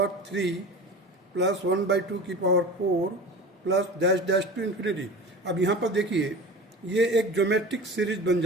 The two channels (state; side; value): normal; both; correlation 0.34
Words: 3 plus 1 by 2 की power 4 plus dash dash to infinity. अब यहाँ पर देखिए ये एक geometric series बन